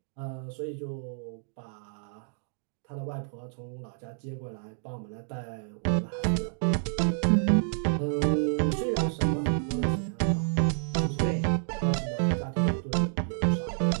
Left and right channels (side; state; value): left; silent; digital silence